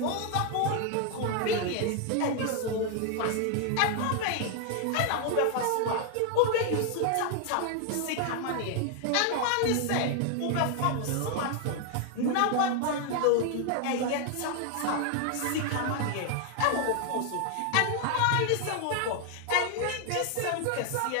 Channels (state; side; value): different; both; correlation 0.00